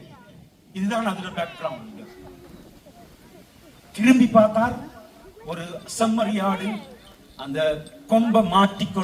இதுதான் அதோட பேக்ரவுண்ட். திரும்பி பார்த்தார், ஒரு செம்மறியாடு அந்த கொம்பை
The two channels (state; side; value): identical; both; correlation 1.00